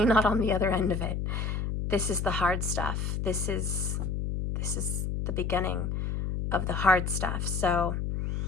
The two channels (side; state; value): left; noise; hum, 1 dB below the sound